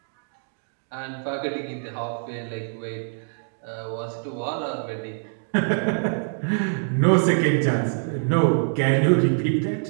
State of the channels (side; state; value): left; silent; 62 dB below the other